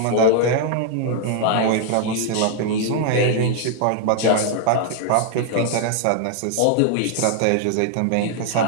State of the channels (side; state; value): both; different; correlation 0.00